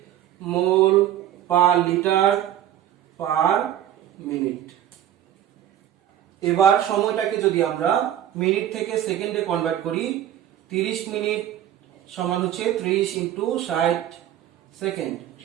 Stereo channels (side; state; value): left; quieter; 11.4 dB